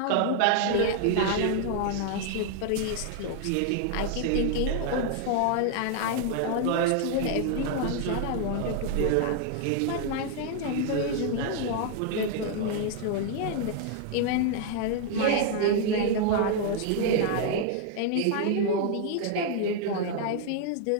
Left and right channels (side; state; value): both; different; correlation 0.00